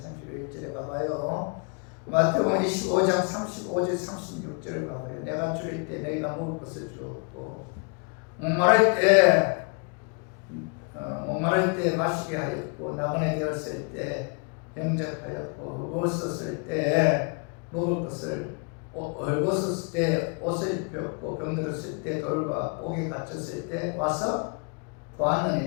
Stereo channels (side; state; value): right; quieter; 36.2 dB